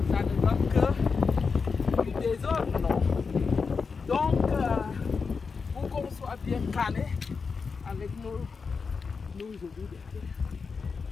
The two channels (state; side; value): quieter; right; 5.1 dB